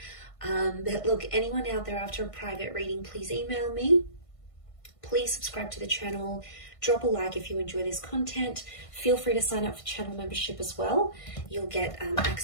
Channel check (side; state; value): right; late; 1.5 ms